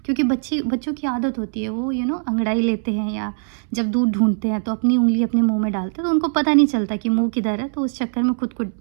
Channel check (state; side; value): silent; left; 65 dB below the other